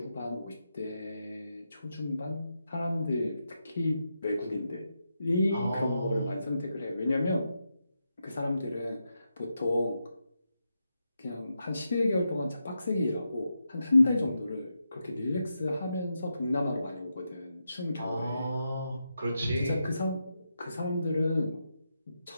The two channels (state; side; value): inverted; both; correlation -0.86